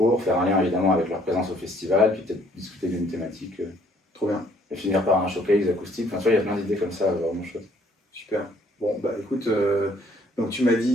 faire un lien évidemment avec leur présence au festival, puis peut-être discuter d'une thématique. Trop bien. Et finir par un showcase acoustique. Enfin, tu vois, il y a plein d'idées comme ça, vraiment chouette. Super. Bon, bah écoute, donc tu m'as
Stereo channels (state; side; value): normal; both; correlation 0.63